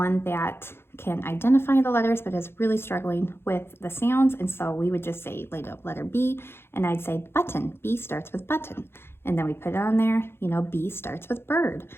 that can identify the letters but is really struggling with the sounds. And so we would just say letter B, and I'd say button. B starts with button. And then we put it on there, you know, B starts with bird.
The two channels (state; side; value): late; right; 0.11 ms